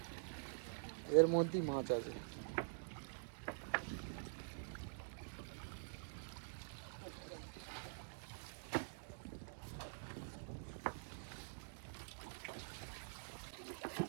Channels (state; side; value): silent; left; digital silence